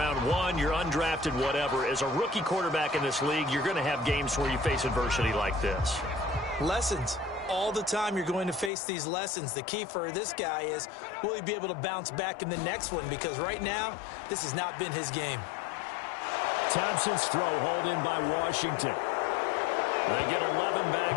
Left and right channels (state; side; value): drops out; right; at 8.7 s